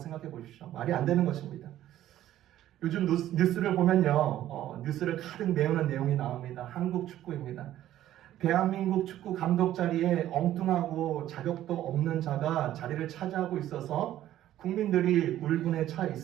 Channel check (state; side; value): quieter; left; 12.9 dB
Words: 보십시오. 말이 안 되는 것입니다. 요즘 뉴스를 보면요, 뉴스를 가득 메우는 내용이 나옵니다. 한국 축구입니다. 대한민국 축구 감독 자리에 엉뚱하고 자격도 없는 자가 자리를 차지하고 있어서 국민들이 울분에 차